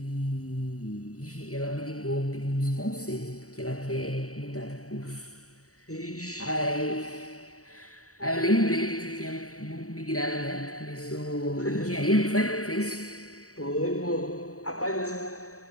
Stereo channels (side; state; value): right; late; 0.65 ms